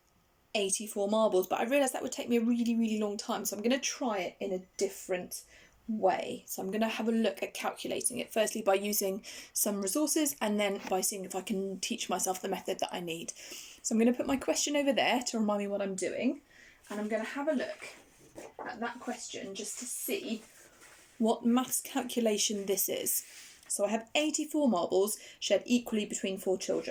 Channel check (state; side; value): identical; both; correlation 1.00